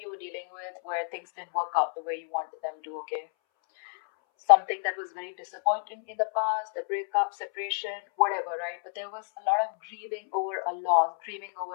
you were dealing with where things didn't work out the way you wanted them to, okay. Something that was very disappointing in the past, a breakup, separation, whatever, right? But there was a lot of grieving over a loss, grieving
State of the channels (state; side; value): silent; right; 59 dB below the other